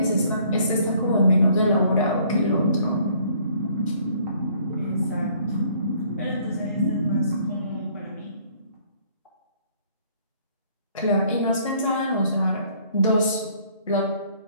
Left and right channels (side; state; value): both; inverted; correlation -0.60